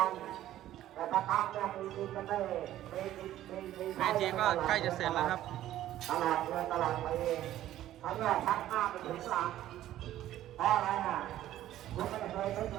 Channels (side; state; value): left; quieter; 13.2 dB